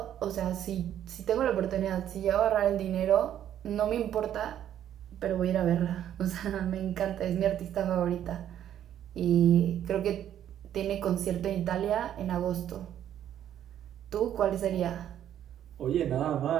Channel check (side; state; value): left; quieter; 10.7 dB